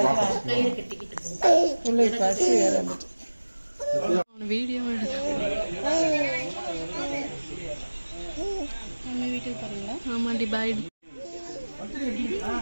பிள்ளைக்கு பசி வேற வந்துட்டு வீடியோ வீட்டுக்கு பாருங்களா ஆமாண்டி பாய்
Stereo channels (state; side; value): inverted; both; correlation -1.00